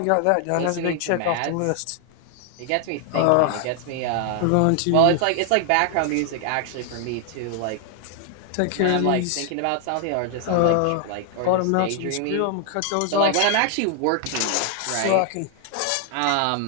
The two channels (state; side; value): different; both; correlation 0.00